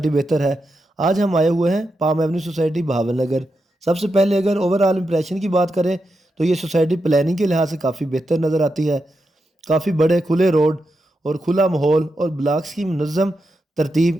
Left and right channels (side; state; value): both; normal; correlation 0.87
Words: بہتر ہے۔ آج ہم آئے ہوئے ہیں پام ایونیو سوسائٹی بھاون نگر۔ سب سے پہلے اگر اوور آل امپریشن کی بات کریں تو یہ سوسائٹی پلاننگ کے لحاظ سے کافی بہتر نظر آتی ہے۔ کافی بڑے کھلے روڈ اور کھلا ماحول اور بلاکس کی منظم ترتیب